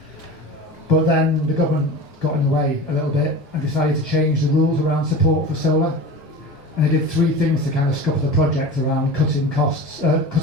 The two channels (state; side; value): normal; both; correlation 0.33